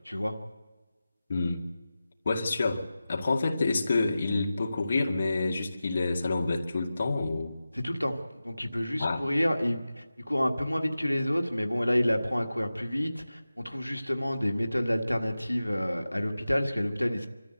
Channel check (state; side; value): inverted; both; correlation -0.94